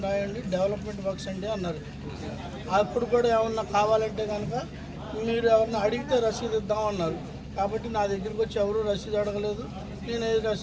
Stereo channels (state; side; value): identical; both; correlation 1.00